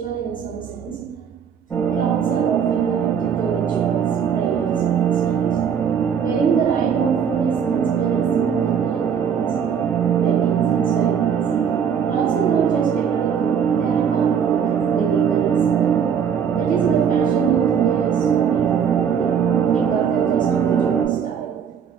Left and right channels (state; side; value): quieter; left; 7.5 dB